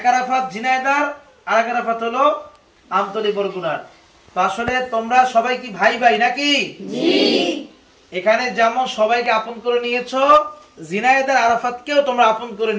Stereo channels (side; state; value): both; identical; correlation 1.00